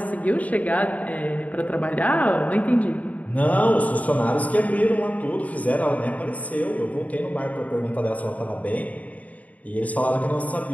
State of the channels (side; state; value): right; late; 0.071 ms